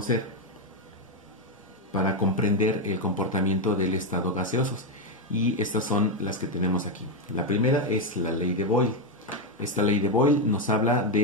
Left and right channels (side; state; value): both; normal; correlation 0.06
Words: para comprender el comportamiento del estado gaseoso. Y estas son las que tenemos aquí. La primera es la ley de Boyle. Esta ley de Boyle nos habla